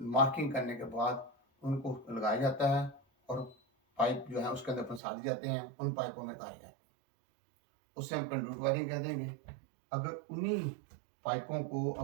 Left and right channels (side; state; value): left; drops out; at 5.0 s